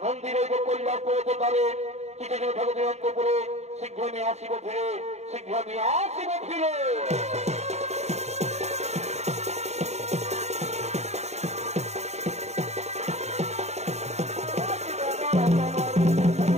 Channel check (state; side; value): late; left; 0.32 ms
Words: মন্দিরে কল্যাণ পড়তে পারে কিছু জন ঠাকুর অন্ত করে, শীঘ্র নিয়ে আসিব ফিরে, শীঘ্র নিয়ে আসিব ফিরে।